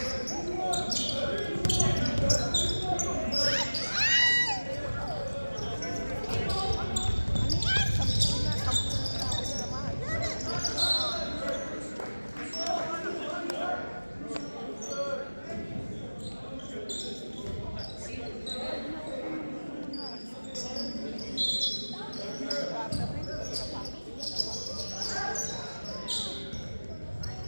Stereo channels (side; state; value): both; inverted; correlation -1.00